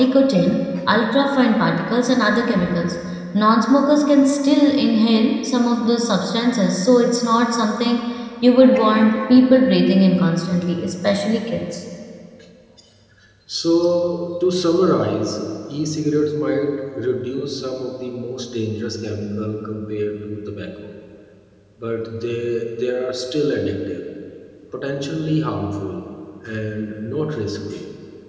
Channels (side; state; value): both; identical; correlation 1.00